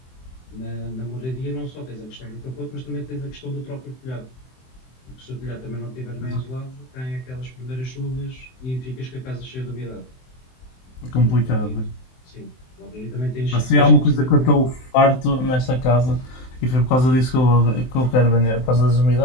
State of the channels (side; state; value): right; late; 23 ms